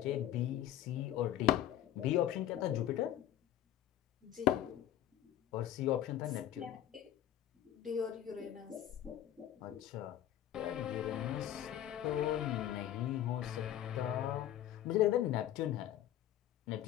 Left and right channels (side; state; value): right; quieter; 12.0 dB